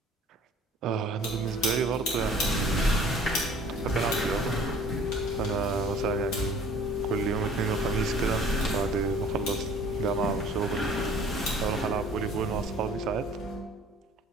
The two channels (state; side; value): normal; both; correlation 0.51